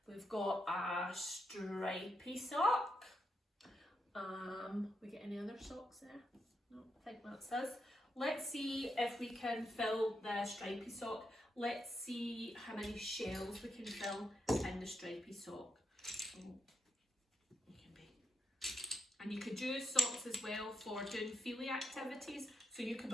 we've got a stripy sock. We get any other socks there? No, I think that's us. Let's see if we can fill the stripy sock. Let's see how many shells we can fill in the stripy sock. So, and you could use socks as well for doing feely activities. So you could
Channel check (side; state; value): both; normal; correlation 0.83